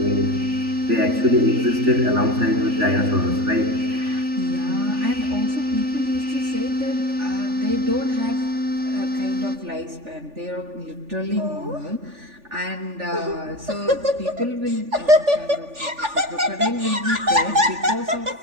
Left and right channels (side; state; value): left; late; 3.4 ms